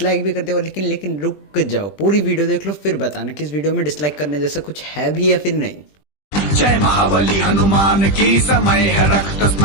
भी करते हो, लेकिन रुक जाओ, पूरी वीडियो देख लो फिर बताना कि इस वीडियो में डिसलाइक करने जैसा कुछ है भी या फिर नहीं। जय महाबली हनुमान की, समय है रक्त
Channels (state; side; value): late; right; 20 ms